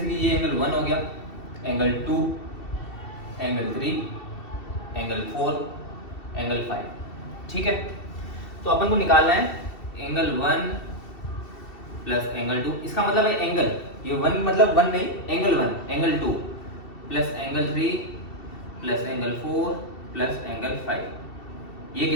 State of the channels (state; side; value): late; right; 2.7 ms